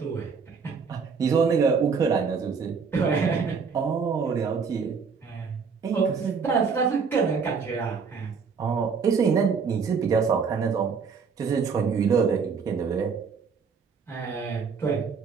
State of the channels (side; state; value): left; quieter; 5.6 dB